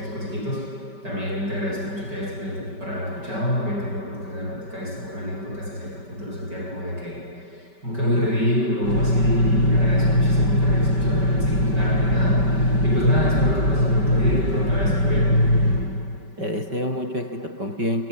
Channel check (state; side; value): late; left; 5.2 ms